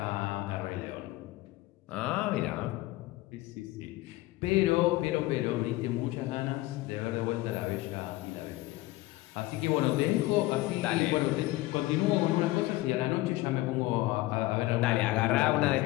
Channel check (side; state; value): right; quieter; 18.3 dB